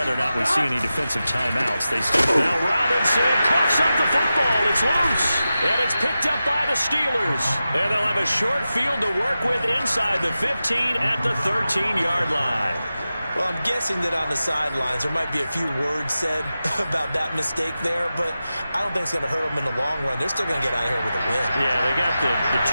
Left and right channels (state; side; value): inverted; both; correlation -0.93